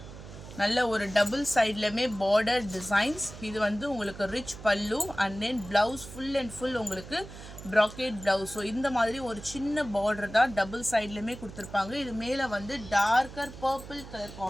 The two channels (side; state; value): right; noise; hum, 14 dB below the sound